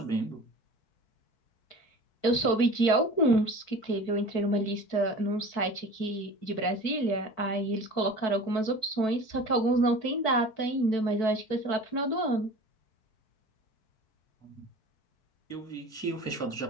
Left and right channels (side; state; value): right; late; 4.6 ms